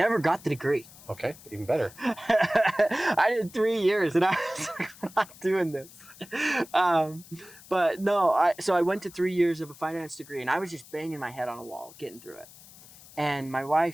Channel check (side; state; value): left; noise; hiss, 21 dB below the sound